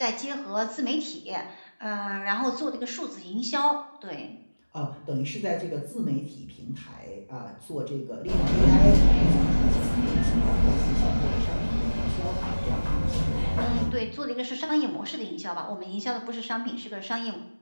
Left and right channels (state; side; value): inverted; both; correlation -1.00